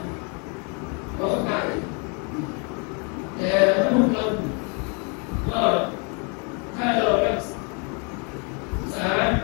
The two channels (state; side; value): quieter; right; 35.6 dB